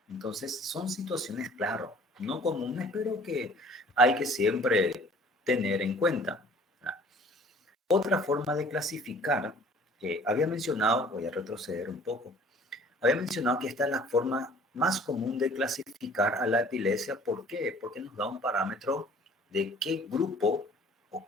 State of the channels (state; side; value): normal; both; correlation 0.52